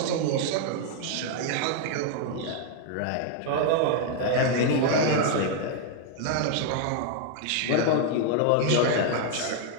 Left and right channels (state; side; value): different; both; correlation 0.00